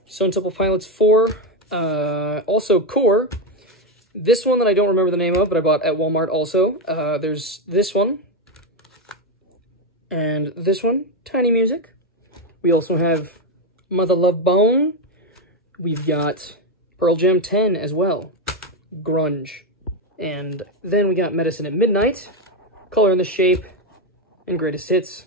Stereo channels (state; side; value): normal; both; correlation 0.08